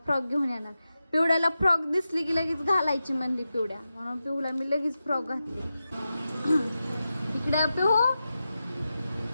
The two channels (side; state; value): both; inverted; correlation -0.91